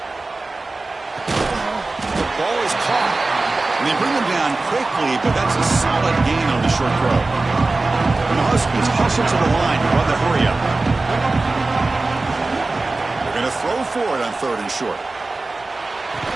The ball is caught. And they bring him down quickly, but that's a solid gain on the short throw. And the Huskies hustle to the line to run the hurry up. They're going to throw for it on third and short.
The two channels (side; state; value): left; quieter; 3.3 dB